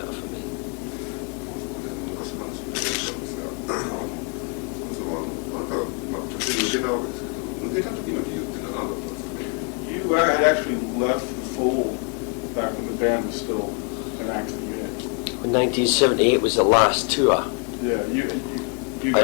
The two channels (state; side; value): quieter; right; 36.7 dB